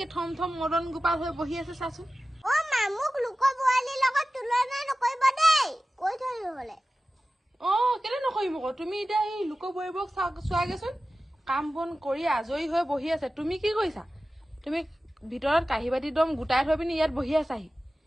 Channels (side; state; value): both; normal; correlation 0.95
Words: থম থম মদন গোপাল হৈ বহি আছে চাচোন মোক লোকৰ বোৱাৰীৰ লগত তুলনা নকৰিব দেই কৈ থলো হলে কেলে নকৰিম আকৌ তুমি এতিয়া এই লোকৰ বোৱাৰীবোৰক চোৱাগেচোন কাম বন কৰি আজৰি হৈ বহি আছে তুমি কি কৰিছা তুমি ভিতৰত কাহি বাতি দম গোটাই থৈ পিনি ইয়াত বহি আছাহি